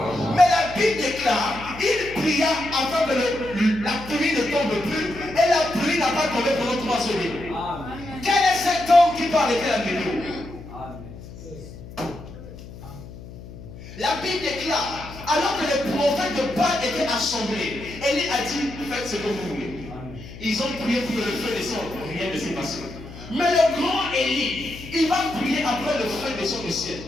Mais la Bible déclare, il pria afin que la pluie ne tombe plus et la pluie n'a pas tombé pendant 3 semaines. Quel est cet homme qui peut arrêter la météo? La Bible déclare, alors que les prophètes de Baal étaient assemblés, Élie a dit, faites ce que vous voulez. Ils ont prié pour que le feu descende, rien ne s'est passé. Mais le grand Élie, il va prier après le feu descend du ciel.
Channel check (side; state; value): left; noise; hum, 15 dB below the sound